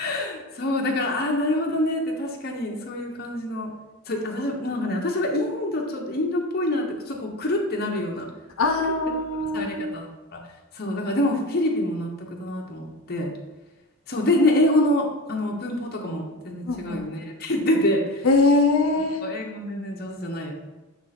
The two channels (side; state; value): both; normal; correlation 0.28